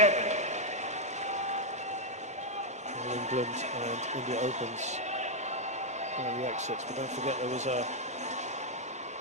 England and India Opens the exits, but don't forget there was a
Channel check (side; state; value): both; normal; correlation 0.00